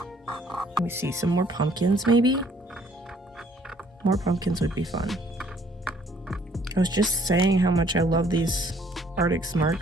Let me see, some more pumpkins maybe? More pumpkins would be fun. I was just saying how much I love these Artix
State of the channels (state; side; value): normal; both; correlation 0.61